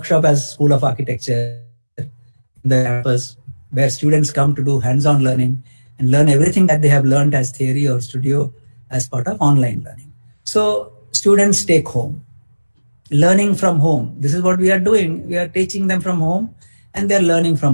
as School of Architecture in the campus, where students come to do hands-on learning and learn everything that they have learned as theory or studio as part of online learning. So students take home, learning from home. This is what we are doing. We are teaching them from home and they're learning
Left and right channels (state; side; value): inverted; both; correlation -1.00